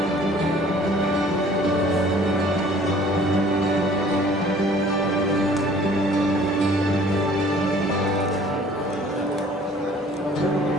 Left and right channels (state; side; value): normal; both; correlation 0.53